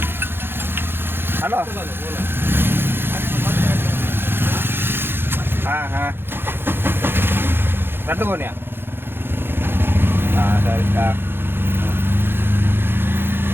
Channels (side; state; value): left; late; 0.10 ms